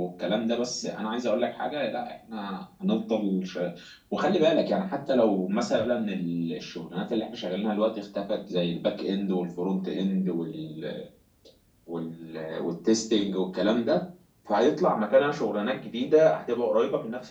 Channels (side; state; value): both; identical; correlation 1.00